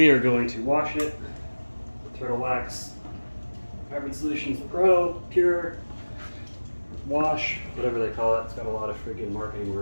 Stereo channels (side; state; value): both; inverted; correlation -1.00